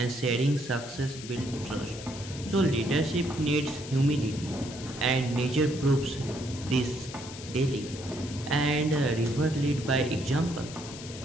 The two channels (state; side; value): noise; left; hiss, 13 dB below the sound